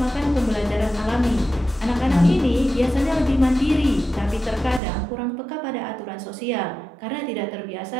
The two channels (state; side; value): drops out; left; at 4.8 s